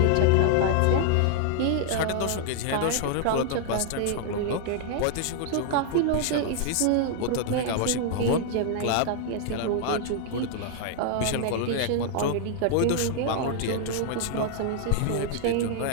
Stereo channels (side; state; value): both; different; correlation 0.00